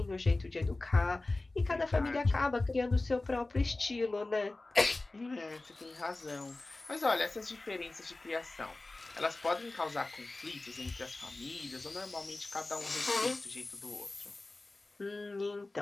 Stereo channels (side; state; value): right; quieter; 3.1 dB